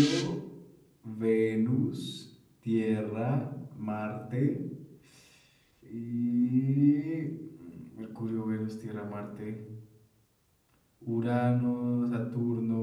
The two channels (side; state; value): both; identical; correlation 1.00